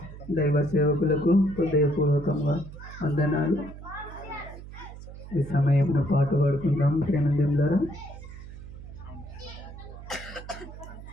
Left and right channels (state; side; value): noise; right; hum, 14 dB below the sound